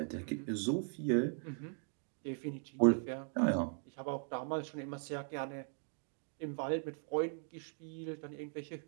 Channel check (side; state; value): left; silent; 52 dB below the other